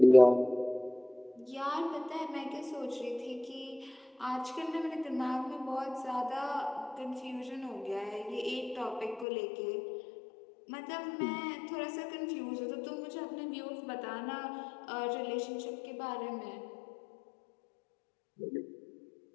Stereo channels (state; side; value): drops out; right; at 9.2 s